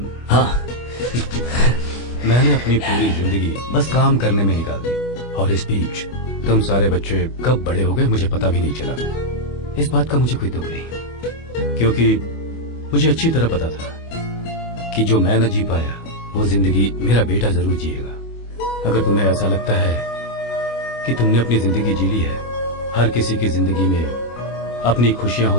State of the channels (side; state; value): right; late; 25 ms